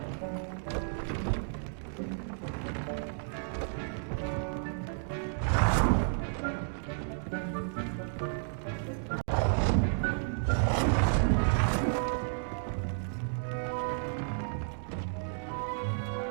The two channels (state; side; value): silent; left; digital silence